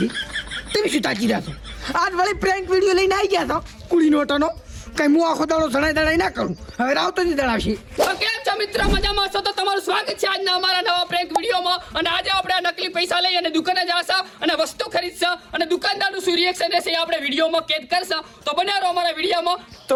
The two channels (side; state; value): both; identical; correlation 1.00